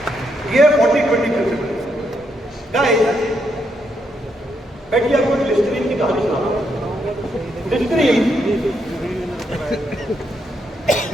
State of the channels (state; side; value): normal; both; correlation 0.78